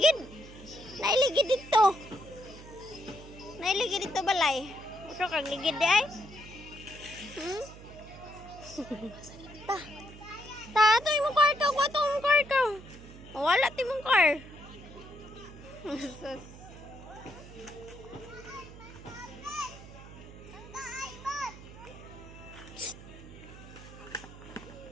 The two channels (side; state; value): right; noise; hum, 16 dB below the sound